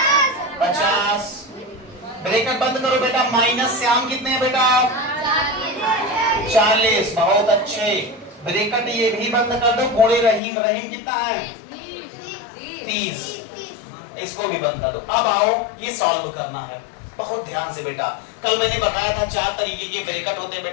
50। ब्रैकेट बंद करो बेटा। माइनस श्याम कितने हैं बेटा? 40। बहुत अच्छे। ब्रैकेट ये भी बंद कर दो। गुणे रहीम कितना है? 30। इसको भी बंद कर दो। अब आओ ये सॉल्व करना है। बहुत ध्यान से बेटा, कल मैंने बताया था 4 तरीके के ब्रैकेट होते हैं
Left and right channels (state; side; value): drops out; right; at 10.4 s